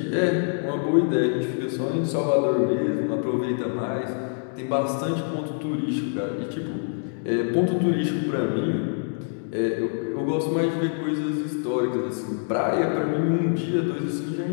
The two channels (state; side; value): silent; right; digital silence